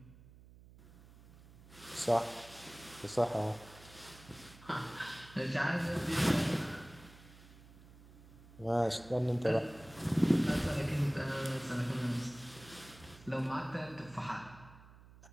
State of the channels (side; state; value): right; noise; hum, 21 dB below the sound